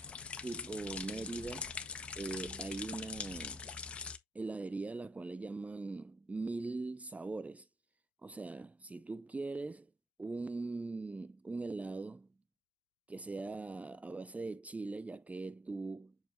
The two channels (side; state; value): both; normal; correlation 0.76